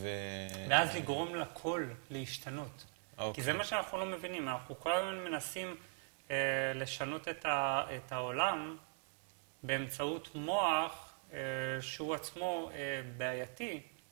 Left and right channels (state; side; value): silent; left; 51 dB below the other